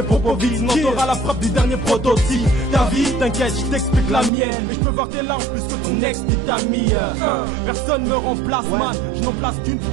propos vides, sinon t'auras la frappe du dernier prototype. Ta vie, t'inquiète, je t'explique la mienne. Et je peux voir tes larmes plus que ton ex dit ta mie. Personne me remplace man, je n'en place qu'une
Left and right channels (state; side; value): drops out; left; at 4.3 s